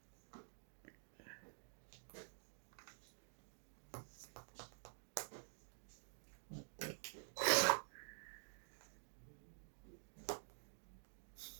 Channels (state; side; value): silent; left; digital silence